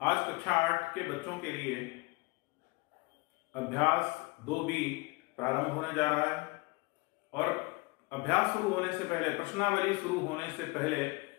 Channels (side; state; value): right; quieter; 25.1 dB